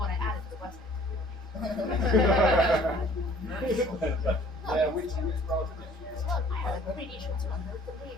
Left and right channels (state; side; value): normal; both; correlation 0.54